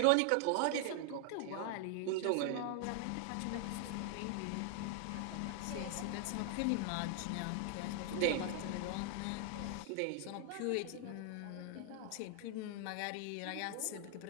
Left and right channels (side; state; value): both; different; correlation 0.00